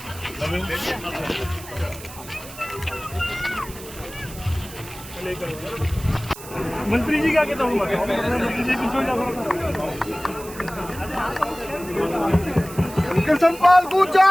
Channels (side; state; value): right; noise; hiss, 15 dB below the sound